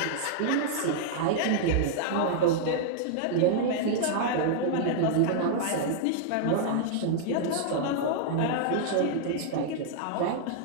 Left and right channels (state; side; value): different; both; correlation -0.01